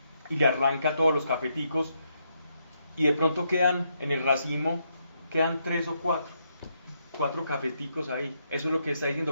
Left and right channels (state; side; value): inverted; both; correlation -0.78